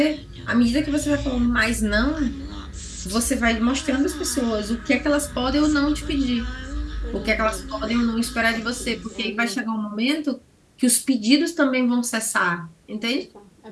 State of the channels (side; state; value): both; identical; correlation 1.00